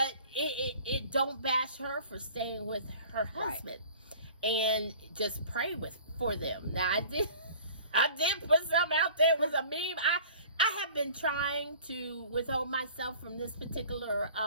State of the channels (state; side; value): inverted; both; correlation -0.46